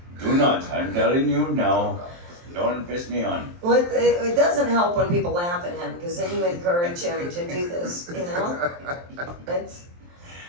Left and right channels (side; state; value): left; late; 23 ms